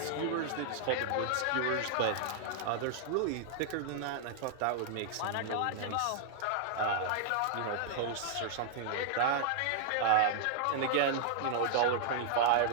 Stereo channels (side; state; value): both; different; correlation -0.01